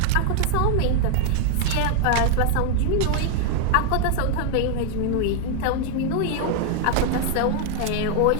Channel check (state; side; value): different; both; correlation 0.00